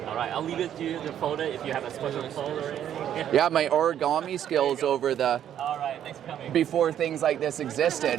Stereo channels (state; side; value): quieter; left; 10.2 dB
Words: All right, I'll leave it to you to fold it if you have a special fold or anything. Yeah, my origami skills over the All right, thanks for coming. before things like this